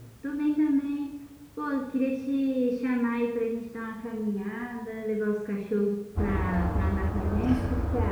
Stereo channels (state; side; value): identical; both; correlation 1.00